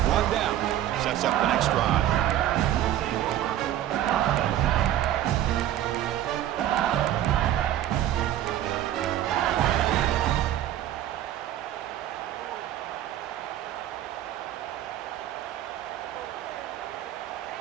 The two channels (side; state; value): left; quieter; 12.3 dB